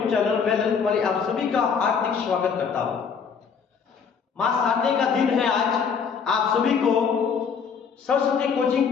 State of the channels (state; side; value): quieter; right; 6.3 dB